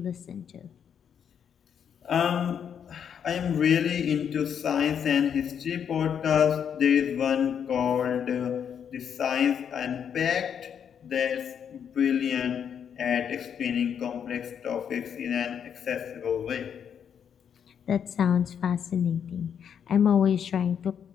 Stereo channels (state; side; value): quieter; right; 8.0 dB